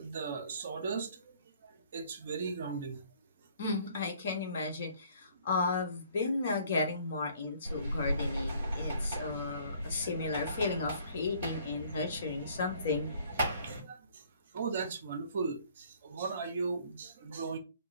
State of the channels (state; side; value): inverted; both; correlation -0.59